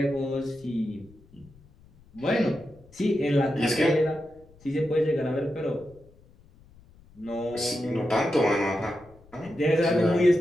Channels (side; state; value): left; noise; rumble, 26 dB below the sound